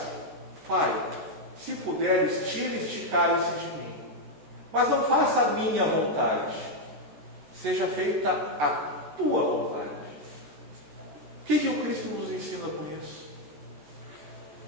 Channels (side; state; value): left; late; 14 ms